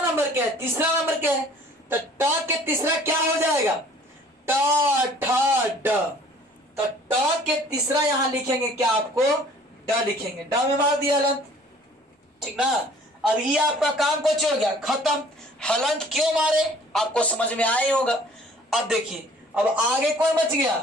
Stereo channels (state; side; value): normal; both; correlation 0.53